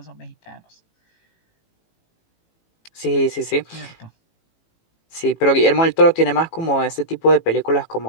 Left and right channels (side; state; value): right; late; 18 ms